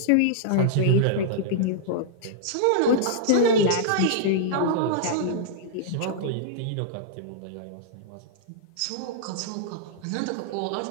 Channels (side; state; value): both; different; correlation -0.02